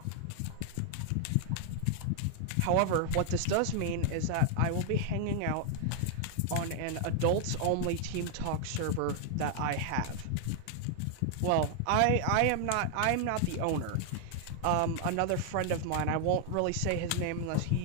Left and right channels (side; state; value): both; different; correlation 0.00